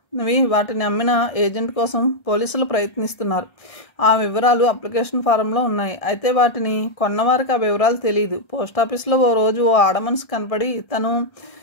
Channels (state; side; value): late; right; 1.3 ms